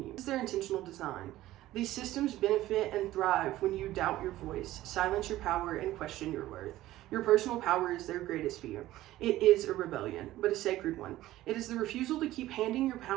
you. This is their intentional design. These systems benefit and thrive when you doubt your voice, silence your power, and question your worth. Your personal power is their greatest fear. It is a rebellion, but a sacred one. It is the refusal to keep handing your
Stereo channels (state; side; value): quieter; left; 15.4 dB